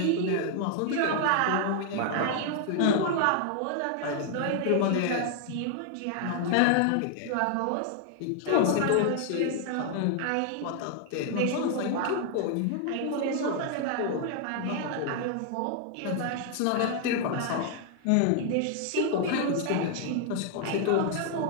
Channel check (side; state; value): both; different; correlation 0.00